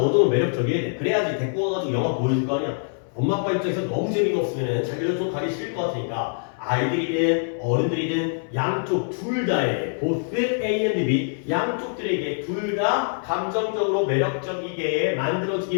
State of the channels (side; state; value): right; silent; 58 dB below the other